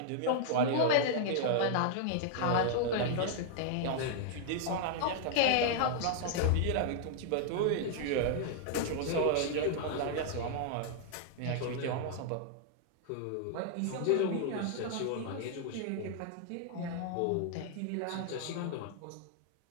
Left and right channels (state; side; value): different; both; correlation -0.01